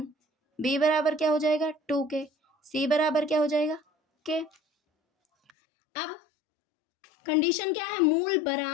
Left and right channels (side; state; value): right; drops out; at 5.5 s